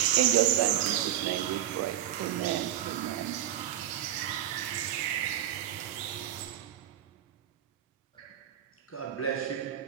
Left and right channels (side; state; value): left; quieter; 11.8 dB